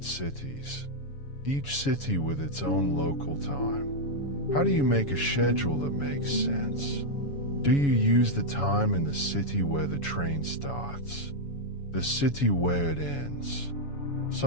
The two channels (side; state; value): right; late; 7.1 ms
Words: cities, each city with its own local time. How do you make a schedule that makes sense? Do you use the time in the city where the train starts? The city where it ends?